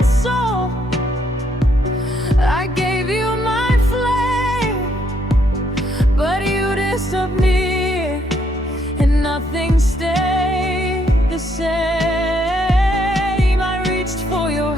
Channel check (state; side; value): normal; both; correlation 0.72